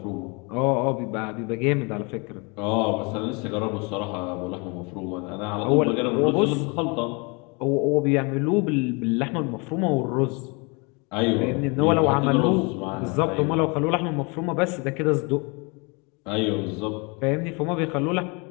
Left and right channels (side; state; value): right; quieter; 30.6 dB